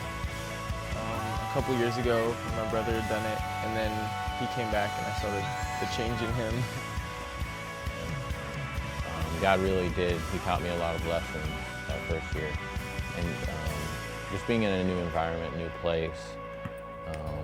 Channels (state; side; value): identical; both; correlation 1.00